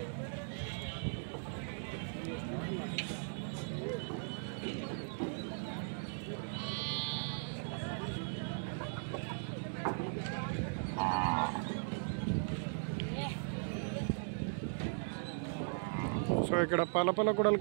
సో ఇక్కడ పాలపాల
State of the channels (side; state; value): left; silent; digital silence